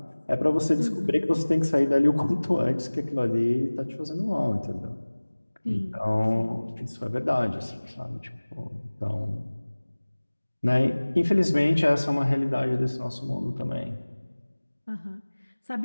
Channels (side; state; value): both; inverted; correlation -1.00